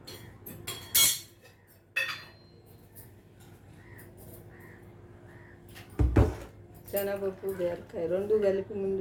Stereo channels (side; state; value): both; identical; correlation 1.00